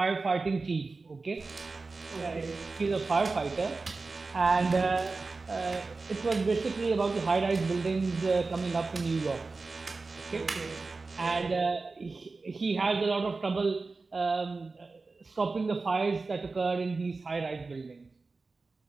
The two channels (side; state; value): left; quieter; 3.9 dB